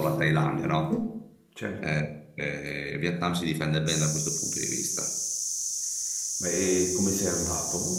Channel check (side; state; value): both; identical; correlation 1.00